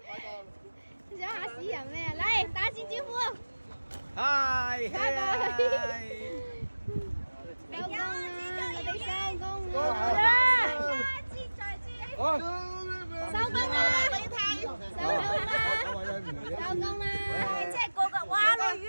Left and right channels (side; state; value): both; inverted; correlation -1.00